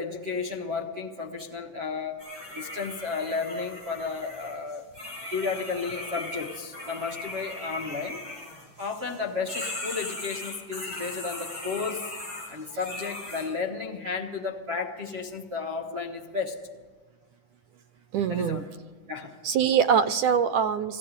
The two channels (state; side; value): late; left; 10 ms